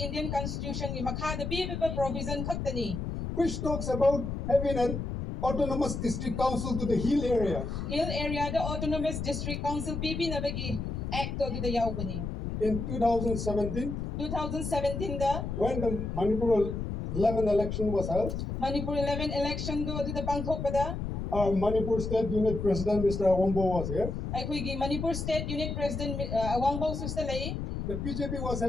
Indian Constitution gi makha bibi provision khaktani. which talks about having an autonomous district council to the hill area. Hill area the autonomous district council bibi na bagi act to the yaubani. In 2017, 2017 da when the Manipur 11 election was held, Manipur 11 election do the pangthok pada. our Manipur State Unit President, Mr. Awambo, was here. Aikoy Manipur State Unit President Awangbo sustalay. The BJP was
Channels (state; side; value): noise; left; rumble, 4 dB below the sound